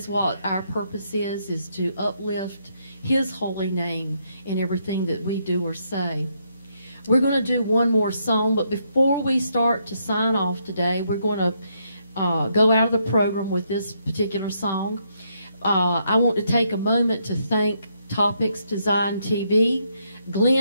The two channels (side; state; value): both; inverted; correlation -0.76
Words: what our purpose is to uplift His holy name in everything that we do or say. We're going to do one more song, but before we start to sign off today, we're going to go out of the program with this particular song. I want to take a moment to thank Topics Design TV,